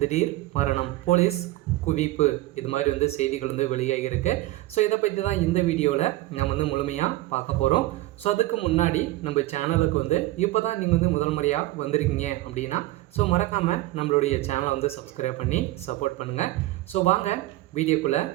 திடீர் மரணம், போலீஸ் குவிப்பு, இது மாதிரி செய்திகள் வெளியாகியிருக்கு. ஸோ இதை பற்றி தான் இந்த வீடியோவில் நம்ம முழுமையாக பார்க்க போகிறோம். ஸோ அதுக்கு முன்னாடி நம்ம சேனலுக்கு இப்போ தான் நீங்கள் முதல் முறையாக வந்திருக்கீங்க அப்படின்னா ஸோ மறக்காமல் நம்மளுடைய சேனலை சப்ஸ்கிரைப் பண்ணி சப்போர்ட் பண்ணுங்கள். ஸோ வாங்க வீடியோக்குள்ளே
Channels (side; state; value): left; quieter; 17.5 dB